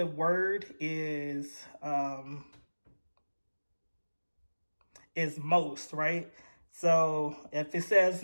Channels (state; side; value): inverted; both; correlation -1.00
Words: word is most, right? So if it says